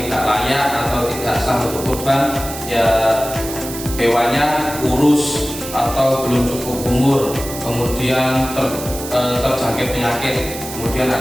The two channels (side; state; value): right; noise; hiss, 10 dB below the sound